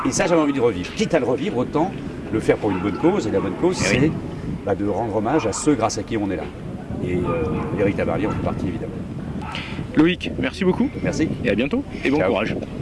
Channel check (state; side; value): identical; both; correlation 1.00